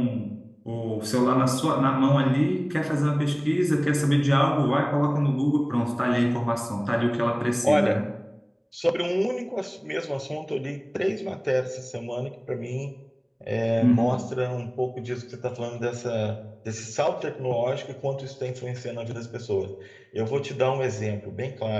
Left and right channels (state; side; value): identical; both; correlation 1.00